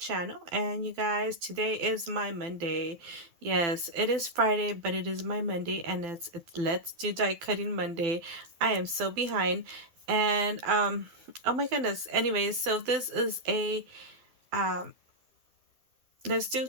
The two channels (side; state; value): left; late; 12 ms